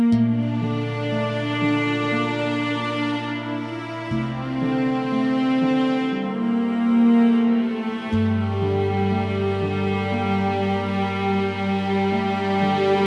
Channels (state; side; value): identical; both; correlation 1.00